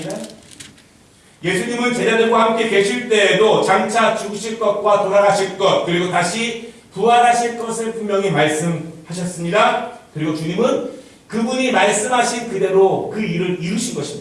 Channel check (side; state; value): both; identical; correlation 1.00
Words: 예수님은 제자들과 함께 계실 때에도 장차 죽으실 것과 돌아가실 것 그리고 다시 부활하실 것을 분명히 말씀하셨습니다. 그리고 주님은 그분이 말씀하신 그대로 그 일을 이루신